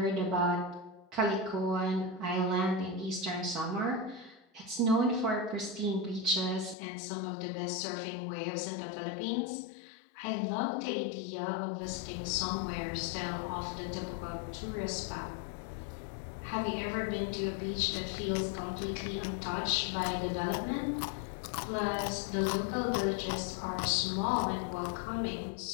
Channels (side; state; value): right; drops out; at 6.8 s